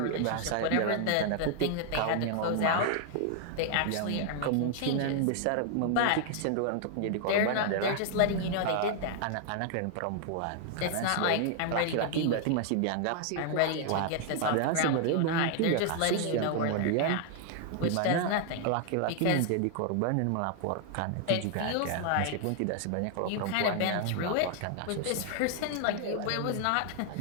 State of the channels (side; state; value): both; different; correlation 0.00